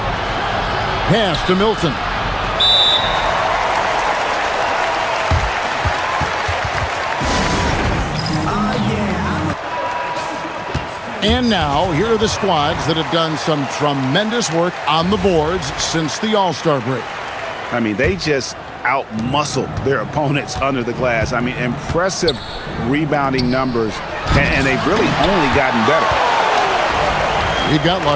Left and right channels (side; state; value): both; identical; correlation 1.00